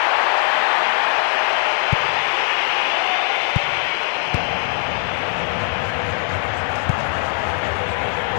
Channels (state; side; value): quieter; right; 32.5 dB